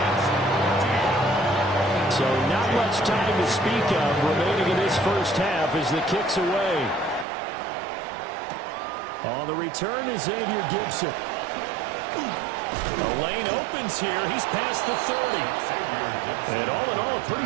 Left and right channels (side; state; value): left; drops out; at 7.2 s